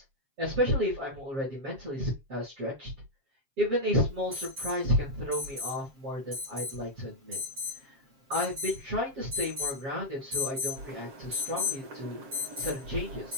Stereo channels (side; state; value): left; late; 7.5 ms